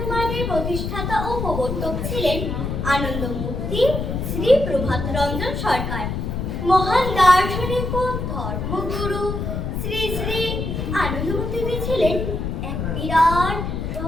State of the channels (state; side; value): noise; left; rumble, 3 dB below the sound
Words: প্রতিষ্ঠাতা ও প্রবর্তক ছিলেন আনন্দমূর্তি শ্রী প্রভাত রঞ্জন সরকার। মহান দার্শনিক ও ধর্মগুরু শ্রী শ্রী আনন্দমূর্তি ছিলেন এক বিরাট